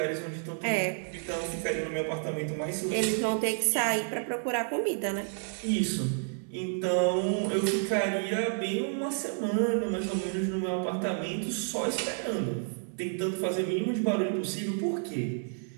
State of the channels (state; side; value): silent; left; 58 dB below the other